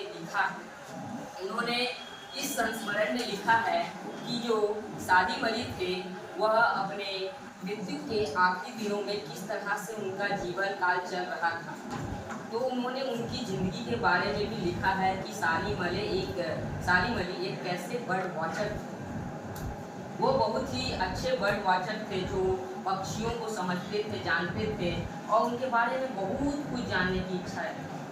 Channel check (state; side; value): identical; both; correlation 1.00